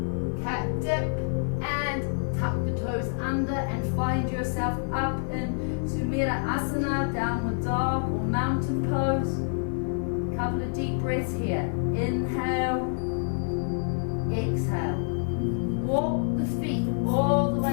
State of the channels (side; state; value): right; silent; digital silence